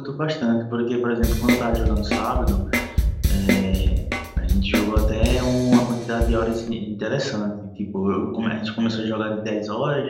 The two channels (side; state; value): both; identical; correlation 1.00